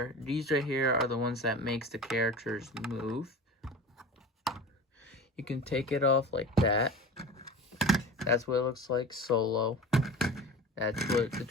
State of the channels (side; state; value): both; normal; correlation 0.34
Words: these right here are the ones that makes the characters move. You can take it off like that. That's what it looks like solo. That's what the